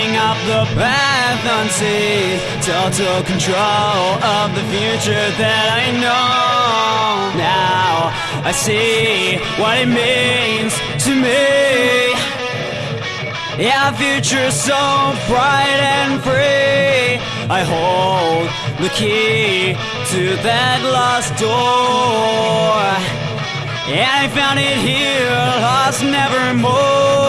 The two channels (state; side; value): identical; both; correlation 1.00